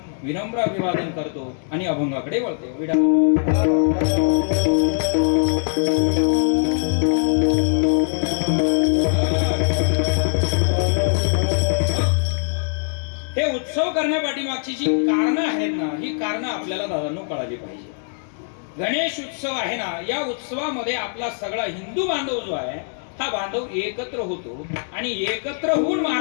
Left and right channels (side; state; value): right; silent; digital silence